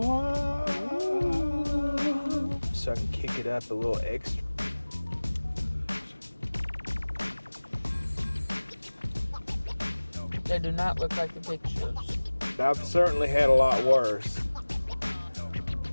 So I can kick it up a little extra. They do not look like the pictures. I've certainly had a lot worse.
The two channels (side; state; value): both; inverted; correlation -1.00